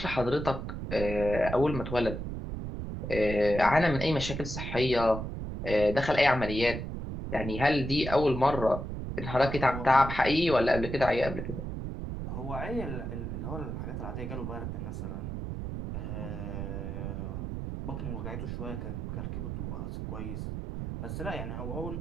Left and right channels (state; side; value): noise; right; rumble, 5 dB below the sound